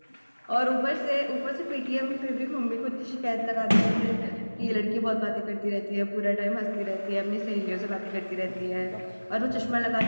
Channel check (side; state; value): both; inverted; correlation -1.00